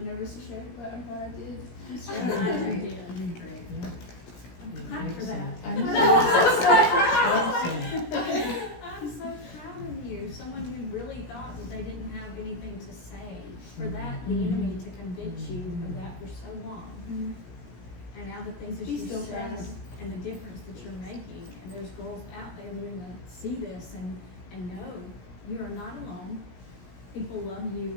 nervous to share, but I'm glad I did. I'm glad you did. You're great, yeah. I'm glad for that. Awesome. I'm so proud of you. Someone who really thought that they didn't have anything to say. For that, the enemy to convince you of that for so long. And now the things that He you still said tries. and the difference that you're making. And there's girls out there that are gonna see this and know you are not alone. People love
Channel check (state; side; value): late; right; 17 ms